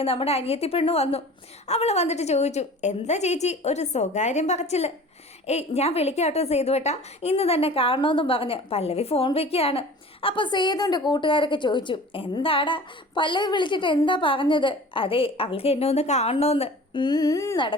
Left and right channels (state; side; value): normal; both; correlation 0.42